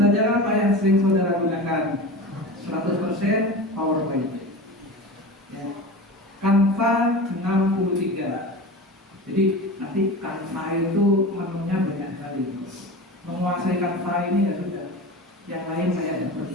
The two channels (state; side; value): normal; both; correlation 0.30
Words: apa yang sering saudara gunakan? 100% PowerPoint. Ya. Canva 63. Jadi nanti Canva itu menunya banyak sekali. Menguasai Canva ini ya sudah, yang lain saya tidak